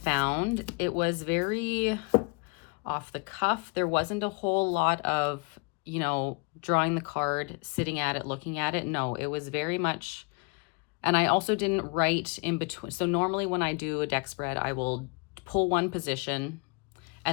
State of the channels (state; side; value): quieter; right; 31.4 dB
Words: It was very off the cuff. There wasn't a whole lot of, you know, drawing the card, sitting at it, looking at it. No, it was very much, and I also didn't write in between. So normally when I do a deck spread, I will pull one position